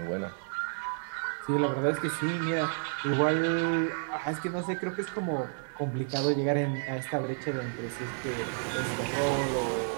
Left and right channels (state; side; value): silent; left; digital silence